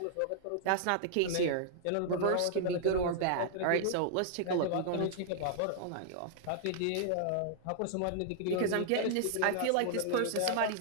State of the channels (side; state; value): both; different; correlation -0.01